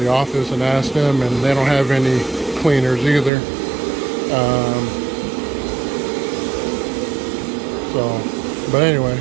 office and asked them, and they don't have any cleaners either. But anyway,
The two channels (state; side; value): drops out; left; at 3.3 s